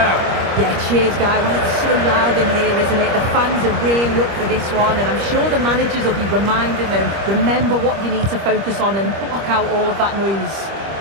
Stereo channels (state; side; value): late; left; 25 ms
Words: Yeah, cheers, Guy. Well, it's so loud in here, isn't it? The fans are really up for this one, and I'm sure the managers will be reminding them, remember what you need to focus on and block out all of that noise.